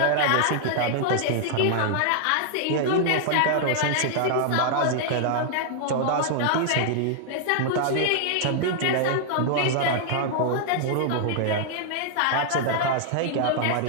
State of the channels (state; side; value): different; both; correlation -0.01